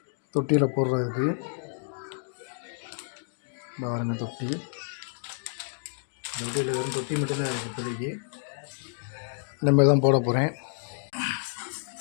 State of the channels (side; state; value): right; silent; digital silence